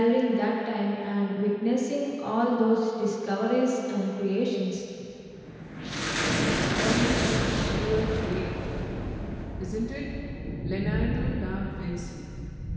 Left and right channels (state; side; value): identical; both; correlation 1.00